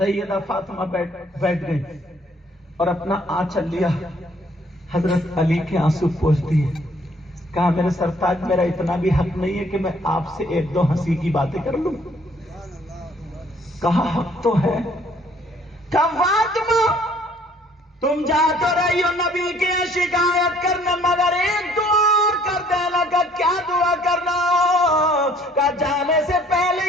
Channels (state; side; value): normal; both; correlation 0.60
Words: فاطمہ بیٹھ گئی اور اپنا آنچل لیا, حضرت علی کے آنسو پوچھ دیے. کہا میرے سرتاج میرا اتنا بھی حق نہیں ہے کہ میں آپ سے ایک دو ہنسی کی باتیں کر لوں. کہا حق تو ہے. کہا فاطمہ تم جا تو رہی ہو نبی کی شکایت کرنے مگر ایک دعا اور کر دینا. کا کیا دعا کرنا؟ کا جانے سے